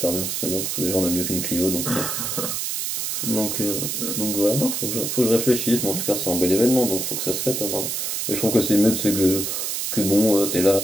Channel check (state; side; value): noise; right; hiss, 2 dB below the sound